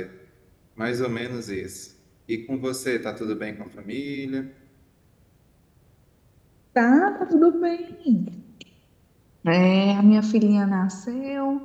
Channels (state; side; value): identical; both; correlation 1.00